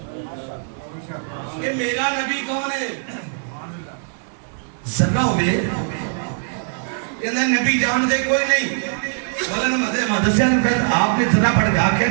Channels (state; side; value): silent; left; digital silence